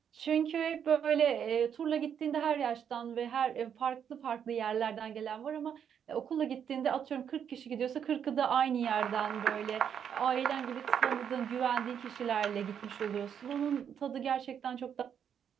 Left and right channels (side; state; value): left; quieter; 8.2 dB